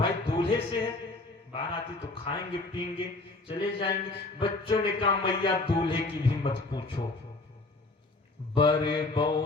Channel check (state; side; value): quieter; right; 3.2 dB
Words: दूल्हे से है, बाराती तो खाएंगे पिएंगे चले जाएंगे। बच्चों ने कहा मैया दूल्हे की भी मत पूछो, बड़े